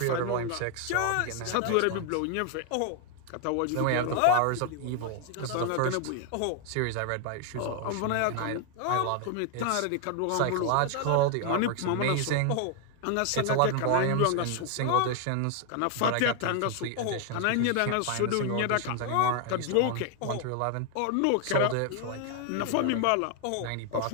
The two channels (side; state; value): both; different; correlation 0.00